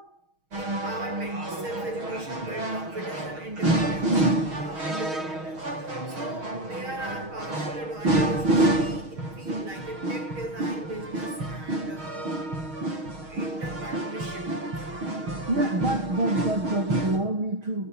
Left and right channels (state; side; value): late; left; 6.4 ms